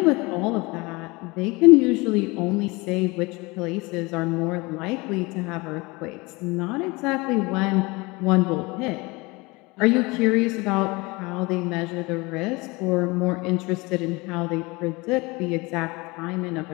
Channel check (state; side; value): quieter; right; 24.5 dB